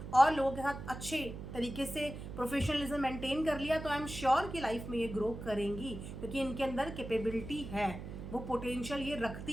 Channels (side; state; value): right; noise; hum, 9 dB below the sound